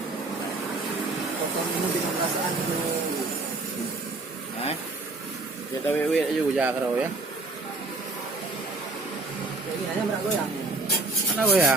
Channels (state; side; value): quieter; left; 3.3 dB